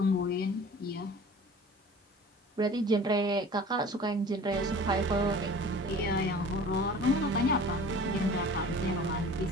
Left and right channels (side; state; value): both; normal; correlation 0.43